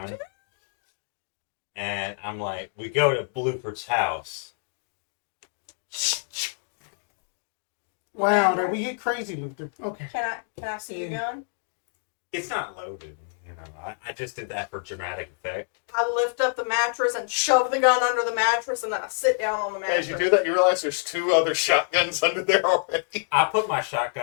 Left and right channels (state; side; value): silent; right; 60 dB below the other